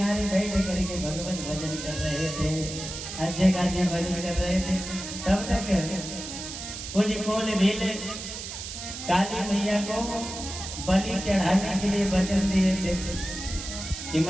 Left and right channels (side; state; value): right; noise; hiss, 8 dB below the sound